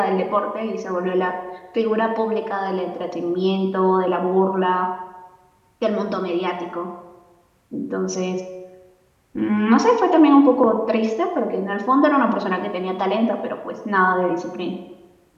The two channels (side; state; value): both; identical; correlation 1.00